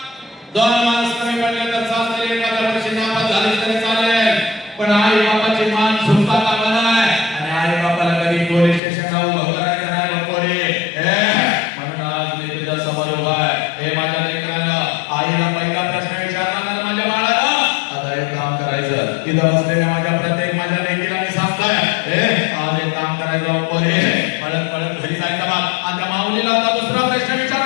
2 माणसं कमी पडले तर चालते, एखाद्या वर्षी नापास झाली तरी चालेल, पण आई बापाची मान झुकता कामा नये. आणि आई बापाला कधी पोलीस स्टेशनला उभं करायचं नाही बा पोरी. म्हणून आज मी तुझ्या समोर उभा आहे. माझ्या लेकरांना आईला पहिला प्रश्न विचारला माझ्या बाळाला, आता एक काम करायचं. इथं बसलेल्या माझ्या प्रत्येक माझ्या लेकीला मी सांगतोय, आज एक काम करायचं पोरी. पळत पळत घरी जायचं बा. आणि त्या माऊलीला आता दुसरा प्रश्न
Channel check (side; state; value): right; drops out; at 8.8 s